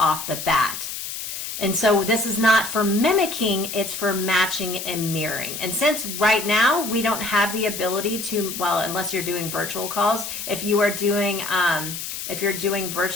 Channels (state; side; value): noise; left; hiss, 7 dB below the sound